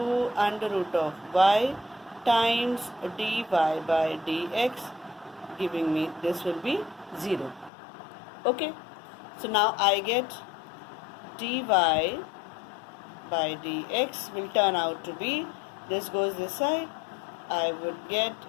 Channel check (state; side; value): drops out; right; at 7.7 s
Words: under root of y times dy by dx, giving me this will be 0. Okay, so now I get dy by dx will turn out to be, this goes this side, I would get